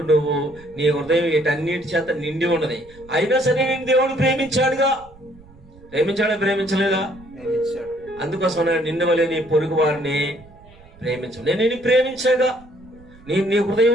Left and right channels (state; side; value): noise; right; rumble, 24 dB below the sound